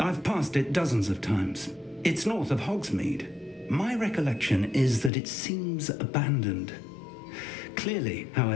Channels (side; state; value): right; drops out; at 5.1 s